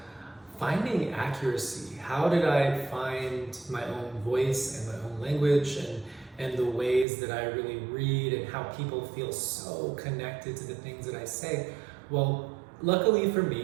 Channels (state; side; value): drops out; left; at 7.1 s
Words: finding accuracy. How did I find my own voice and my own language and the ways that I really read and how people feel so connected to the things that I say? Well, luckily for